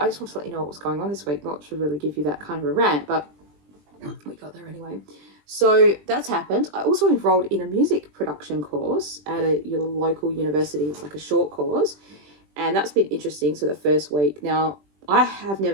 just want to let you know what was going on this week. Not to really give you that kind of a rant, but we got there anyway. So that's happened. I also enrolled in a music production course at your local university. It's like a short course, and that's been interesting. So the first week, now I have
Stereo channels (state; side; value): late; left; 20 ms